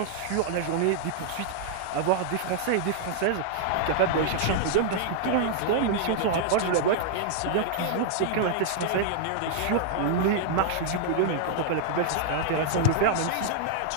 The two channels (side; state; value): both; different; correlation -0.01